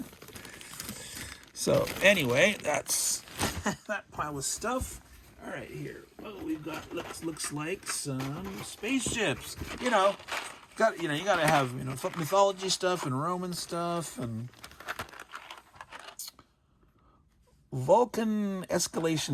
So anyway, that's that pile of stuff. All right, here. Oh, we've got looks like some spaceships. You gotta have mythology stuff and Roman stuff and Vulcan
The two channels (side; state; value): both; identical; correlation 1.00